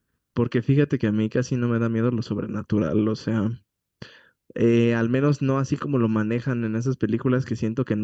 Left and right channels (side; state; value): both; identical; correlation 1.00